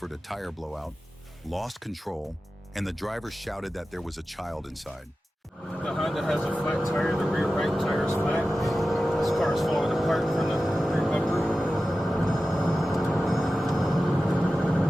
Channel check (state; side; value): normal; both; correlation 0.94